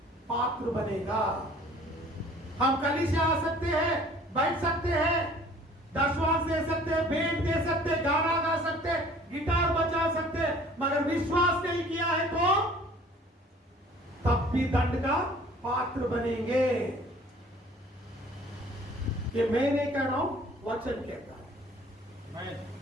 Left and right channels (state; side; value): normal; both; correlation 0.52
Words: पात्र बनेगा. हम कलीसिया आ सकते हैं, बैठ सकते हैं, दशवांश दे सकते हैं, भेंट दे सकते हैं, गाना गा सकते हैं, गिटार बजा सकते हैं, मगर विश्वास नहीं किया है तो तब भी दंड का पात्र बनेंगे. ये मैं नहीं कह रहा हूं, वचन कहता है.